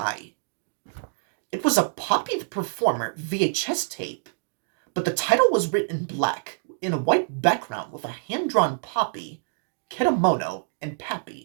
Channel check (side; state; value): left; silent; digital silence